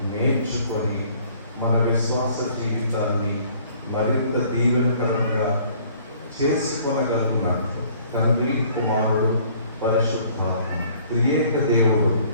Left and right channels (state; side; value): inverted; both; correlation -0.56